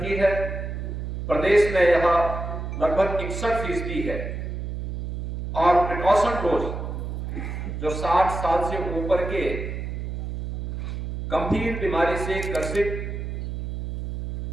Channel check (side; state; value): right; noise; hum, 6 dB below the sound